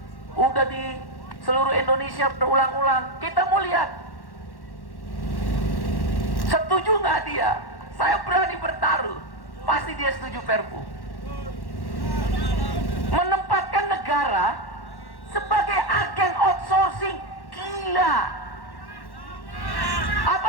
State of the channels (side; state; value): right; late; 1.1 ms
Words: udah di seluruh Indonesia berulang-ulang. Kita mau lihat, setuju nggak dia? Saya berani bertaruh, pasti dia setuju Perpu. Menempatkan negara sebagai agen outsourcing, gila.